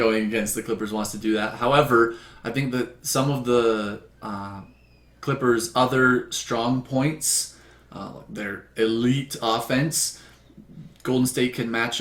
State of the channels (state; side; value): identical; both; correlation 1.00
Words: against the Clippers wants to do that. However, I think that some of the Clippers' other strong points, their elite offense, Golden State can match